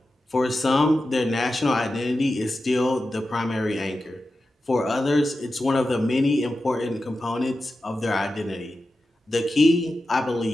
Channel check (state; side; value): normal; both; correlation 0.92